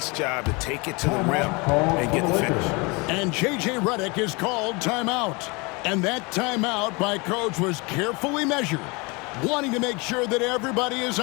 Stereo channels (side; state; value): right; quieter; 27.7 dB